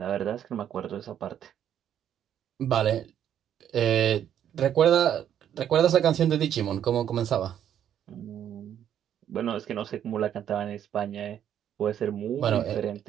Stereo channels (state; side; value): quieter; left; 9.9 dB